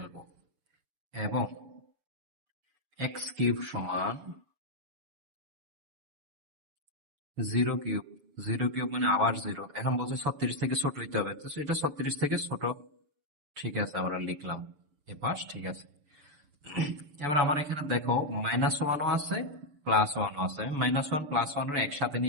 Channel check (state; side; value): late; left; 6.8 ms